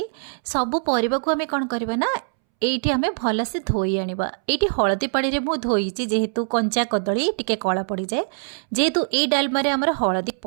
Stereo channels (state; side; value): silent; left; 64 dB below the other